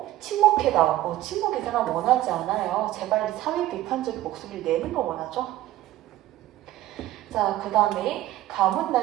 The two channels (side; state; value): left; quieter; 14.7 dB